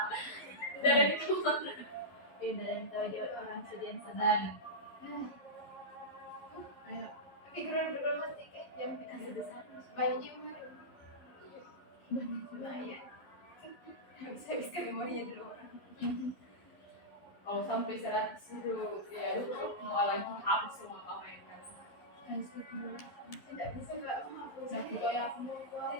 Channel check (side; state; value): right; late; 11 ms